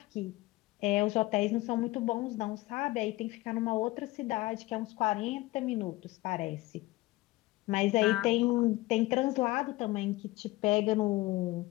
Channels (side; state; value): right; quieter; 19.6 dB